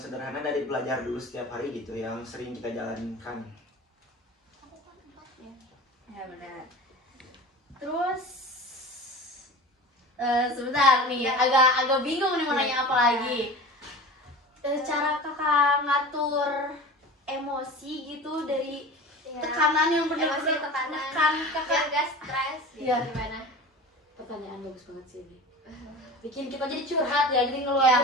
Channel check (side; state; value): both; normal; correlation 0.35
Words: dari belajar dulu setiap hari gitu, yang sering kita jalankan. Ya benar. Terus sebentar nih, agak bingung nih mau nanya apa lagi. Cara kakak ngatur emosi gitu dari tekanan yang Emosi, benar-benar tekanan, menekan kakak. biar gak stres gitu, Iya. gimana? Pertanyaan bagus banget sih ini. Bikin kita jadi curhat ya, jadi